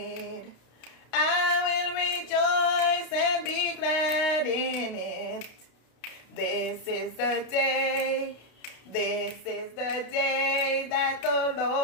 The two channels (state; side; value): late; right; 32 ms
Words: I will rejoice and be glad in it. This is the day. This is the day that the